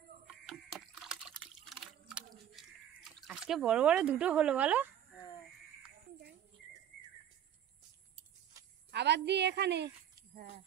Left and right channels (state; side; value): quieter; left; 10.2 dB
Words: আজকে বড় বড় দুটো হলো বলো। আবার দিই এখানে। হ্যাঁ